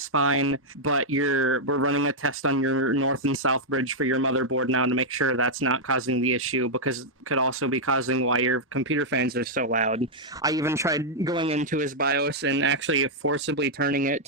fine, but we're running a test on your north and south bridge for your motherboard now to make sure that's not causing the issue, because it could also be causing why your computer fans are so loud. I even tried going into his BIOS and actually forcibly turning it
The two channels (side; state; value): both; normal; correlation -0.05